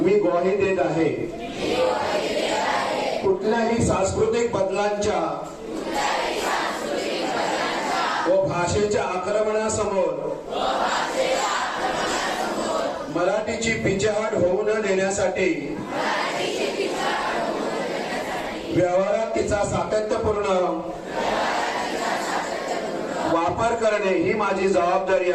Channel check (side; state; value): both; identical; correlation 1.00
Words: मी ग्वाही देत आहे. कुठल्याही सांस्कृतिक बदलांच्या व भाषेच्या आक्रमणासमोर मराठीची पिछेहाट होऊ न देण्यासाठी व्यवहारात तिचा सातत्यपूर्ण वापर करणे ही माझी जबाबदारी